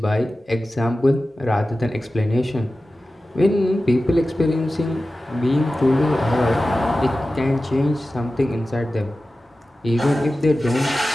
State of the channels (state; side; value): normal; both; correlation 0.95